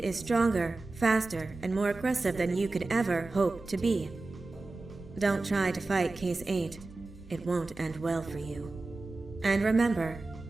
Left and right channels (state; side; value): quieter; left; 3.3 dB